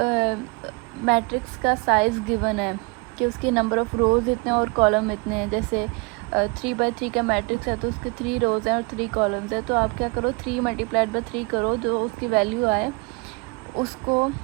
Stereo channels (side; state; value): left; quieter; 27.6 dB